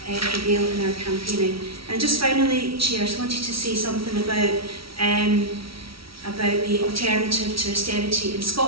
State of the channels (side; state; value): left; late; 0.75 ms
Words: prevail in our campaigning. And just finally, Chair, I just wanted to say something about the alternative to austerity in